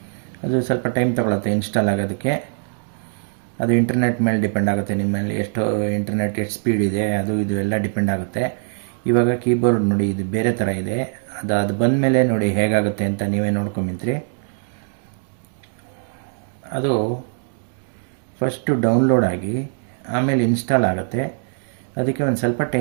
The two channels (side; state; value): left; silent; digital silence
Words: ಅದು ಸ್ವಲ್ಪ ಟೈಮ್ ತೊಗೊಳುತ್ತೆ ಇನ್ಸ್ಟಾಲ್ ಆಗೋದಕ್ಕೆ. ಅದು ಇಂಟರ್ನೆಟ್ ಮೇಲೆ ಡಿಪೆಂಡ್ ಆಗುತ್ತೆ. ನಿಮ್ಮಲ್ಲಿ ಎಷ್ಟು ಇಂಟರ್ನೆಟ್ ಎಷ್ಟು ಸ್ಪೀಡ್ ಇದೆ ಅದು ಇದು ಎಲ್ಲ ಡಿಪೆಂಡ್ ಆಗುತ್ತೆ. ಇವಾಗ ಕೀಬೋರ್ಡ್ ನೋಡಿ, ಇದು ಬೇರೆ ಥರ ಇದೆ. ಅದು ಬಂದ ಮೇಲೆ ನೋಡಿ ಹೇಗಾಗುತ್ತೆ ಅಂತ ನೀವೇ ನೋಡ್ಕೊಂಬಿಂತ್ರಿ. ಅದು ಫಸ್ಟು ಡೌನ್ಲೋಡ್ ಆಗಿ ಆಮೇಲೆ ಇನ್ಸ್ಟಾಲ್ ಆಗುತ್ತೆ. ಅದಕ್ಕೆ ಒಂದು ಸ್ವಲ್ಪ